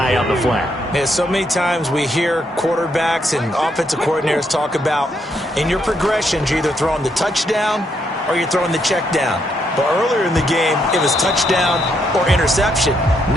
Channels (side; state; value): both; normal; correlation 0.76